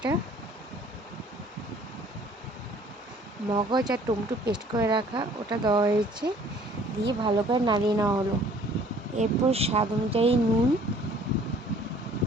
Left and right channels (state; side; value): normal; both; correlation 0.55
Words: মগজ আর টমেটো পেস্ট করে রাখা ওটা দেওয়া হয়েছে। দিয়ে ভালো করে নাড়িয়ে নেওয়া হলো। এরপর স্বাদ অনুযায়ী নুন